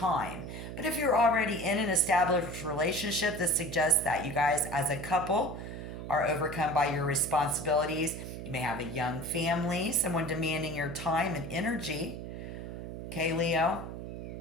But if you're already in an established relationship, this suggests that you guys as a couple are overcome by your responsibilities. You may have a young family, someone demanding your time and energy. Okay, Leo?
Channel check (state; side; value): noise; right; hum, 8 dB below the sound